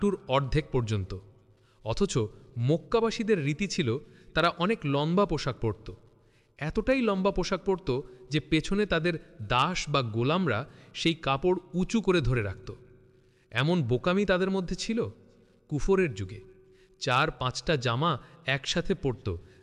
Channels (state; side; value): identical; both; correlation 1.00